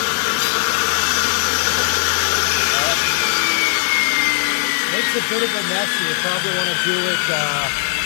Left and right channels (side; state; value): right; silent; 63 dB below the other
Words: A bit of a mess, so you probably want to do it